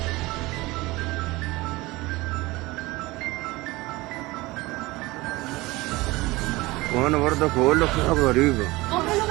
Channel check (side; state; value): left; quieter; 21.0 dB